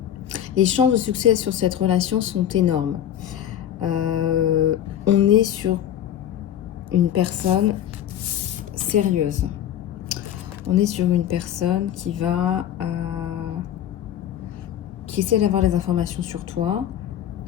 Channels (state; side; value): quieter; right; 10.6 dB